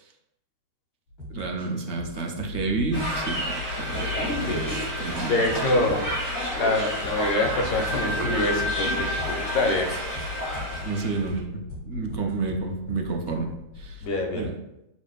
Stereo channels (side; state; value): right; late; 13 ms